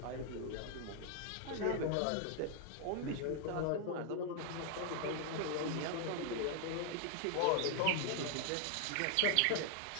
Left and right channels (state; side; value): different; both; correlation 0.00